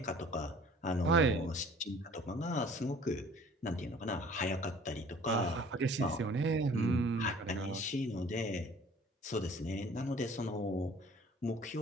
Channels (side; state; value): both; normal; correlation 0.51